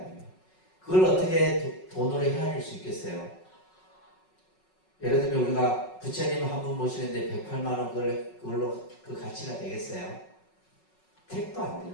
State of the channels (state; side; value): late; right; 5.4 ms